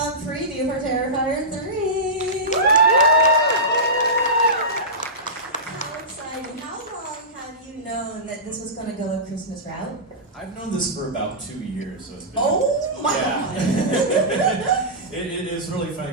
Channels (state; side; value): normal; both; correlation -0.16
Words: preview for Terrifier 3? How exciting. How long have you known that this was going to go a Christmas route? I've known this for about 2 years, so it's been... Oh my God! It is really funny